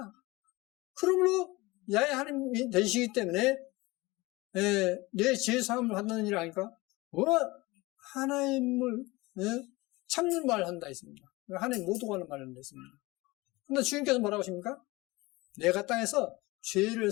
그러므로 야훼 하나님이 되시기 때문에 내 죄사함을 받는 일 아니까 하나님을 참는 말을 한다 했습니다. 하나님 모두가 하는 말을 한다 했습니다. 그런데 주님께서 뭐라고 하십니까? 내가 땅에서 죄를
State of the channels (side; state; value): right; quieter; 21.9 dB